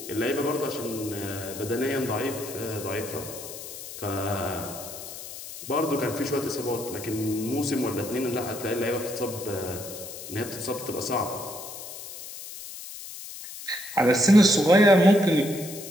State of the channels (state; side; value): noise; left; hiss, 12 dB below the sound